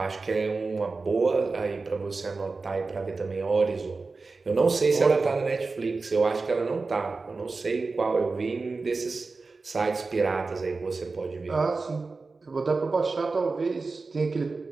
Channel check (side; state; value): left; quieter; 4.0 dB